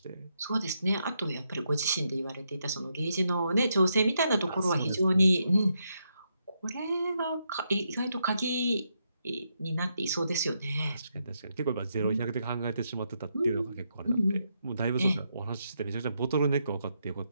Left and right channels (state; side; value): inverted; both; correlation -0.80